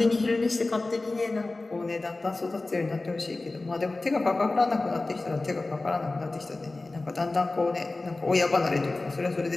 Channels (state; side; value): quieter; right; 3.2 dB